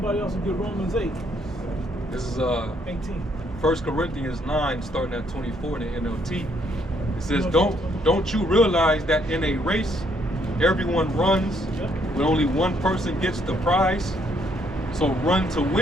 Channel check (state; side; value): normal; both; correlation 0.70